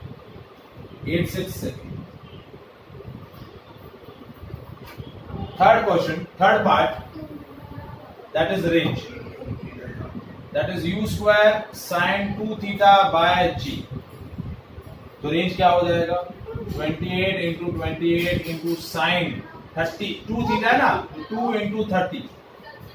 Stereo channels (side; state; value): both; identical; correlation 1.00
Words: second. Third question, third part, that is range, that is u square sine 2 theta by g। तो रेंज क्या हो जाएगा, 28 इंटू 28 इंटू साइन 30, 2 थीटा है ना, 2 इंटू 30